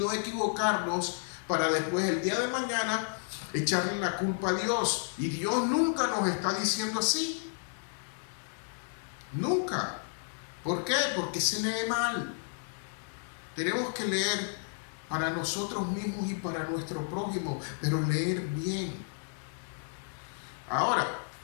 equivocarnos para después el día de mañana echarle la culpa a Dios. Y Dios nunca nos está diciendo así. Nunca. ¿Por qué? Porque se lee mal. Tenemos que leer para nosotros mismos y para nuestro prójimo, pero leer bien. Ahora,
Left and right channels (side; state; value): right; silent; 56 dB below the other